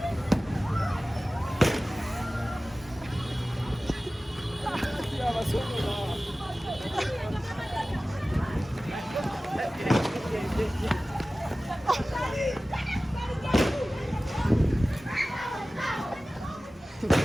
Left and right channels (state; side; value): normal; both; correlation 0.97